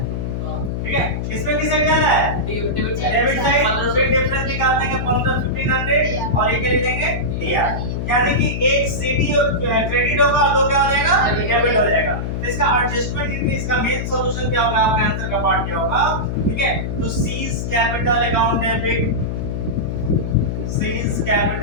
ठीक है, इसमें किस साइड ज्यादा है? Debit side. डेबिट साइड, फिर डिफरेंस निकाल देंगे 1,500 और ये क्या लिखेंगे? डीआर। यानी कि एक सीडी क्रेडिट होगा और दो क्या हो जाएगा? डेबिट हो जाएगा। तो इसका एडजस्टमेंट इनकी, इसका मेन सॉल्यूशन क्या होगा? आपके आंसर का पार्ट क्या होगा? ठीक है, तो seize capital account debit, seize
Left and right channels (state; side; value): noise; left; hum, 3 dB below the sound